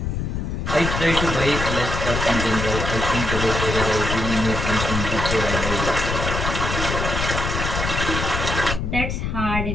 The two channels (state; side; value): noise; left; rumble, 2 dB below the sound